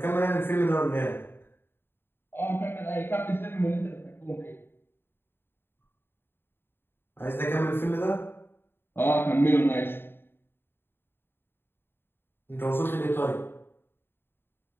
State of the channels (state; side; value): late; right; 0.11 ms